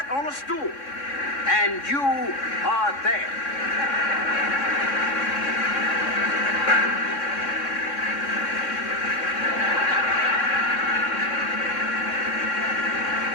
on a stool. And you are there.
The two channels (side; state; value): right; late; 3.6 ms